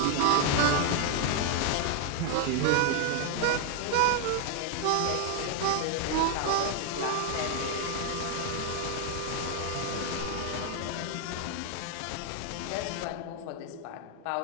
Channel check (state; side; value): different; both; correlation 0.00